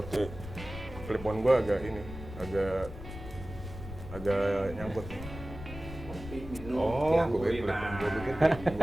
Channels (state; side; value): noise; left; rumble, 12 dB below the sound